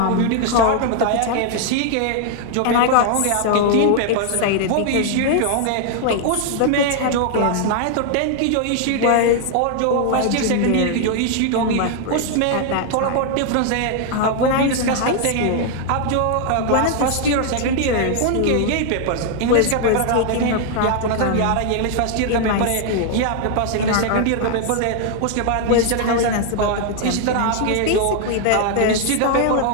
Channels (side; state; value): both; different; correlation 0.00